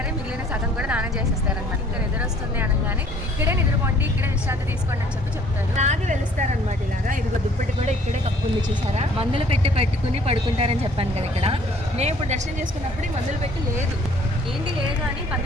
మిగిలిన సగం కూడా దానం చేసేస్తారనమాట. ఇంకా నిద్రొస్తుంది అనగానే ఇక్కడే నిద్రపోండి, ఇక్కడే విశ్రాంతి తీసుకోండి అని చెప్తారు. అలాగే వెలుస్తారనమాట. ఇలాగా ఇదిగో దుప్పటి కూడా ఇక్కడే కప్పు ఉంది చూసారా. మందులు పెట్టుకుని పడుకుంటారని చెప్పాను కదా. ఇక్కడ నేను ఇప్పుడు దర్శనం చేసుకున్నప్పుడు మందులు పెట్టి లేదు, ఏంటి లేదు అని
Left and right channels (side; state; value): both; normal; correlation 0.57